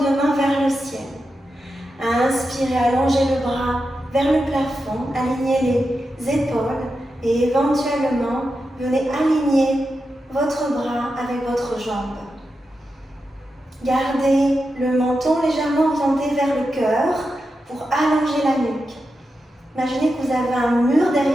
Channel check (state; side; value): normal; both; correlation 0.89